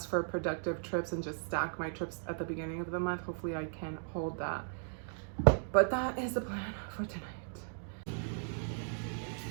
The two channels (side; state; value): left; silent; digital silence